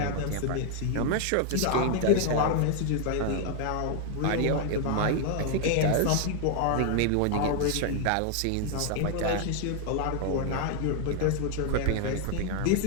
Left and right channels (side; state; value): both; different; correlation 0.00